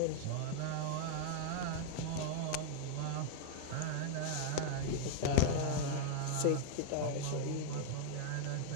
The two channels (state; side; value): different; both; correlation -0.01